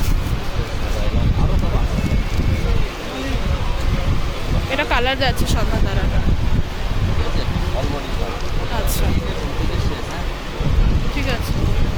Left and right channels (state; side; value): identical; both; correlation 1.00